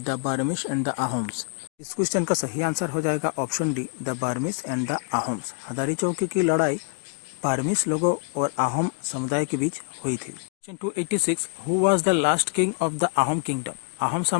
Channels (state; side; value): quieter; right; 39.1 dB